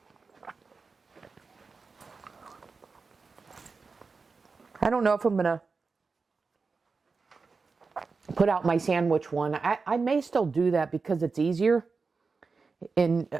I don't know if I'm going to put out my sandwich one. I may still do that because it's easier. And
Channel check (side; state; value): left; quieter; 4.5 dB